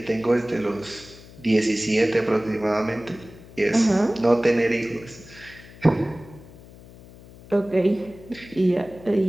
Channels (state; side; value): noise; left; hum, 20 dB below the sound